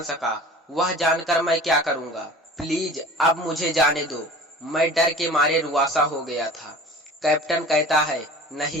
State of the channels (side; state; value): both; normal; correlation 0.41